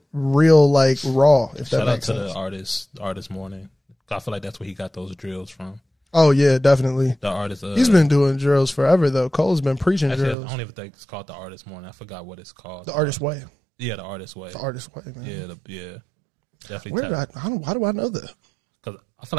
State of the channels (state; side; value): drops out; left; at 10.4 s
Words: like raw, if that makes sense. Shout out to the artist Morning. I feel like that's where he got those drills from. Oh yeah, definitely. The artist he's been doing drills forever though. Cole's been preaching actually, drills. I don't even think it's called the Artist Morning. I forgot what it's called. The Artist Way. Yeah, the Artist Way. The Artist Way, man. Yeah, definitely. Why do I know that? Because I feel